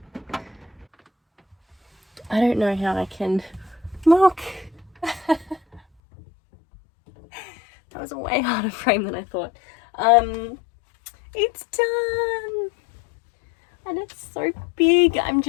I don't know how I can look. That was a way harder frame than I thought. It's done and it's so big. I'm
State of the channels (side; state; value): right; drops out; at 5.8 s